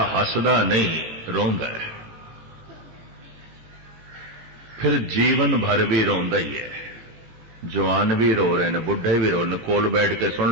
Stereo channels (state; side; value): late; left; 17 ms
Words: हसदा नहीं, रोंदा है, फिर जीवन भर भी रोंदा ही है। जवान भी रो रहे हैं, बुढ़े भी रो रहे, कोल बैठ के